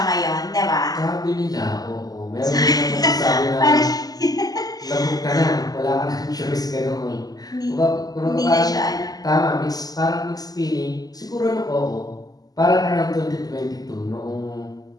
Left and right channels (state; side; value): late; right; 0.18 ms